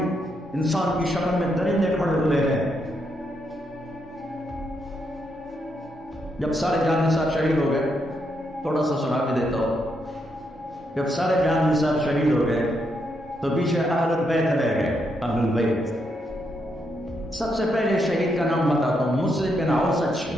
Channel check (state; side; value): normal; both; correlation 0.79